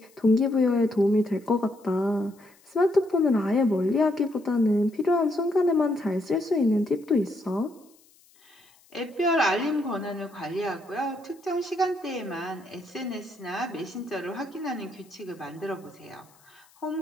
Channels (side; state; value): left; noise; hiss, 30 dB below the sound